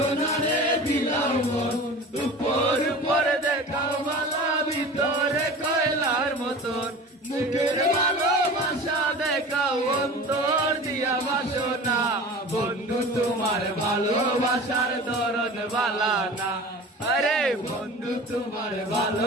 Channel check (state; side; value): normal; both; correlation 0.37